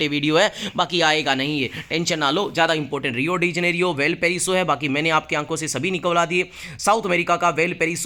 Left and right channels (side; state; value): both; identical; correlation 1.00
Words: है, बाकी आएगा नहीं, ये टेंशन ना लो। ज़्यादा important Rio de Janeiro Valparaiso है, बाकी मैंने आपकी आंखों से सभी निकलवा दिए। साउथ अमेरिका का वेल